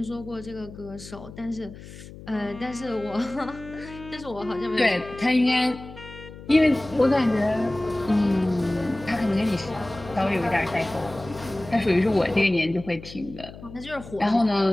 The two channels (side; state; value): left; noise; hum, 16 dB below the sound